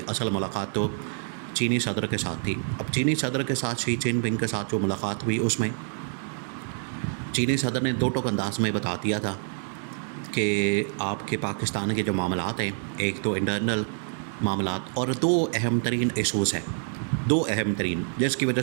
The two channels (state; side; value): silent; left; 60 dB below the other